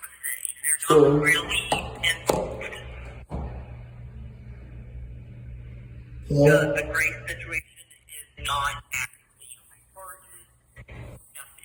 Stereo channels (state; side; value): identical; both; correlation 1.00